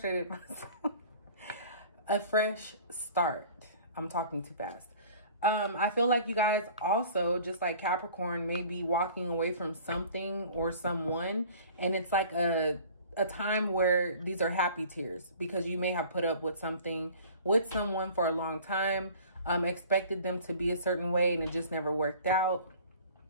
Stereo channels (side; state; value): both; inverted; correlation -0.47